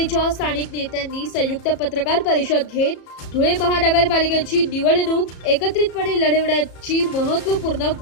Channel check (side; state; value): right; late; 34 ms